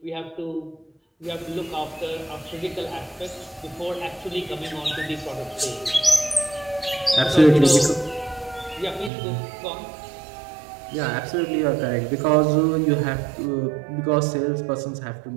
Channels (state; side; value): drops out; left; at 9.1 s